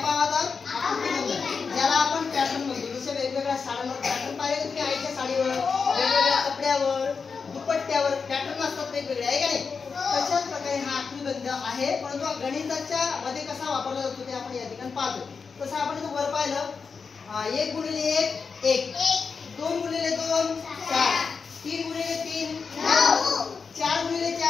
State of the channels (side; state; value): right; quieter; 5.3 dB